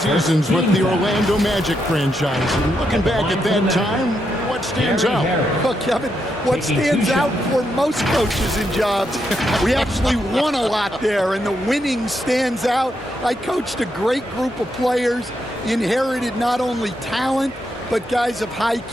with the Orlando Magic franchise. And looking back at that time, what stands out? Well, Kevin, what stands out for most coaches in jobs, we actually won a lot there, and the winning stands out. I coached a great group of players, inherited not only talent, but guys of high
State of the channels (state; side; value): normal; both; correlation 0.81